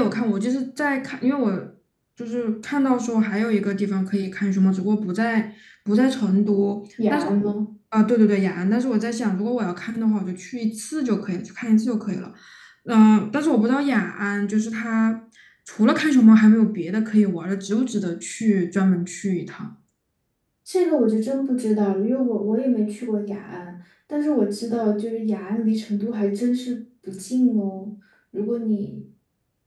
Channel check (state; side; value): identical; both; correlation 1.00